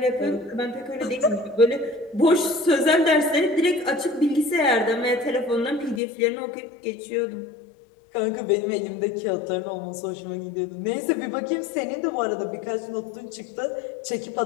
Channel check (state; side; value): drops out; right; at 6.0 s